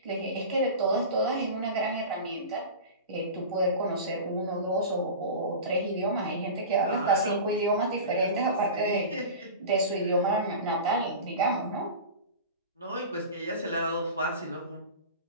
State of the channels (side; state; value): both; inverted; correlation -0.31